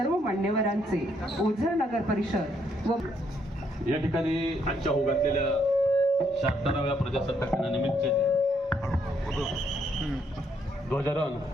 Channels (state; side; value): normal; both; correlation 0.72